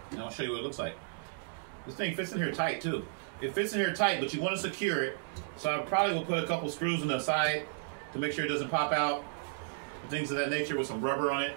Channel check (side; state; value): left; silent; digital silence